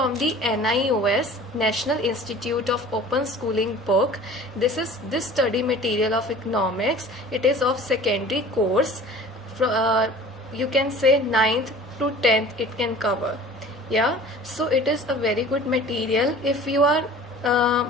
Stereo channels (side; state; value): both; normal; correlation 0.43